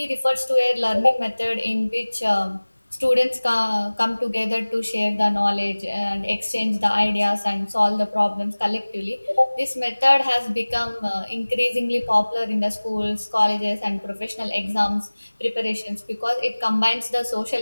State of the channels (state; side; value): inverted; both; correlation -1.00